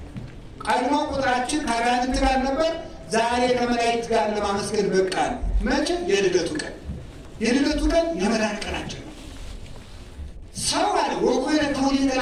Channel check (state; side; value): identical; both; correlation 1.00